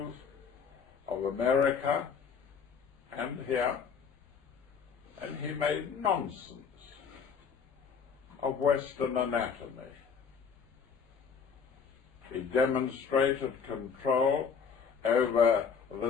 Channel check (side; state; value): right; quieter; 6.3 dB